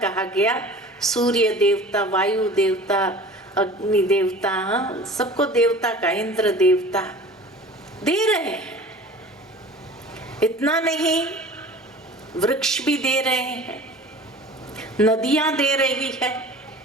कहा गया। सूर्य देवता, वायु देवता, अग्नि देवता, सबको देवता का, इंद्र देवता दे रहे हैं। इतना नहीं, वृक्ष भी दे रहे हैं, नदियां दे रही है।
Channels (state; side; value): normal; both; correlation 0.41